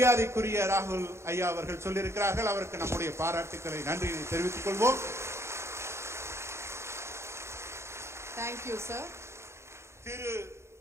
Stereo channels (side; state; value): left; late; 0.13 ms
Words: ராகுல் ஐயா அவர்கள் சொல்லியிருக்கிறார்கள். அவருக்கு நம்முடைய பாராட்டுக்களை, நன்றியை தெரிவித்துக் கொள்வோம். Thank you, sir. Thiru